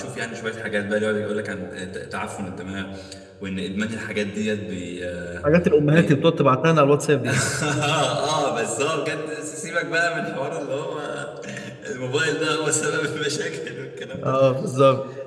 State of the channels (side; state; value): both; identical; correlation 1.00